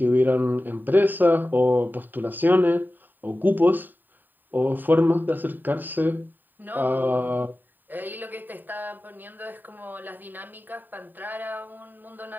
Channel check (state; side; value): late; left; 0.090 ms